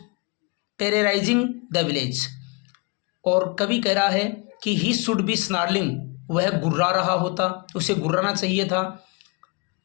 terrorising the village. और कवि कह रहा है कि ही शुड बी स्नार्लिंग, वह गुर्रा रहा होता, उसे गुर्राना चाहिए था।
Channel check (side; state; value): right; quieter; 29.5 dB